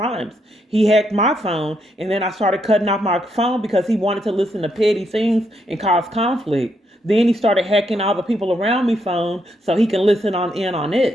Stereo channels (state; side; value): normal; both; correlation 0.77